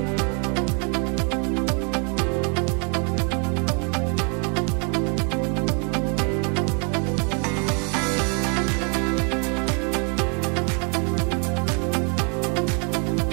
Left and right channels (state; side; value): quieter; left; 37.2 dB